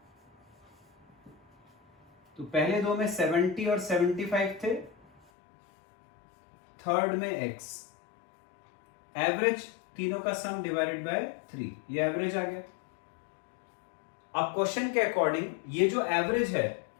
तो पहले दो में 70 और 75 थे, थर्ड में x। एवरेज तीनों का सम डिवाइडेड बाय 3, ये एवरेज आ गया। अब क्वेश्चन के अकॉर्डिंग ये जो एवरेज है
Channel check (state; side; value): drops out; right; at 5.2 s